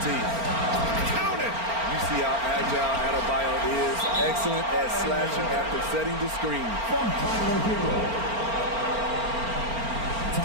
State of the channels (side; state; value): left; late; 4.4 ms